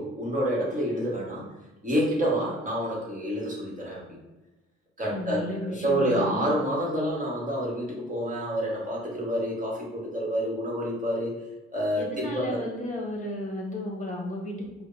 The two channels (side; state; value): both; normal; correlation 0.52